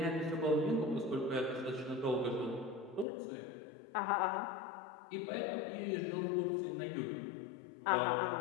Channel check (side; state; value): right; drops out; at 3.1 s